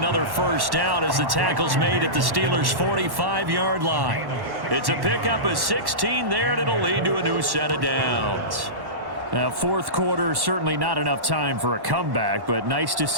first down as the tackle's made at the Steelers' 45-yard line. It's a pickup of 16 there, and it'll lead to a new set of downs. Now, fourth quarter, certainly not enough time for a comeback, but nice to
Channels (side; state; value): left; late; 1.1 ms